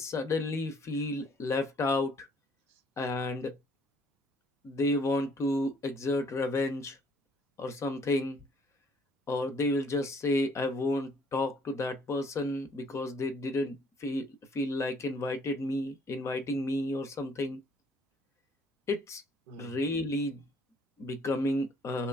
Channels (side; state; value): both; normal; correlation 0.62